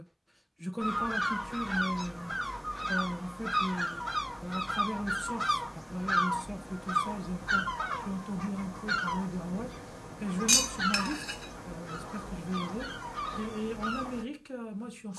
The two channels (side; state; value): both; identical; correlation 1.00